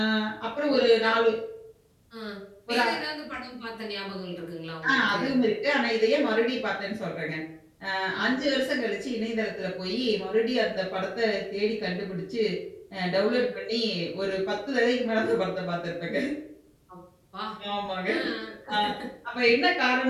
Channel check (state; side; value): identical; both; correlation 1.00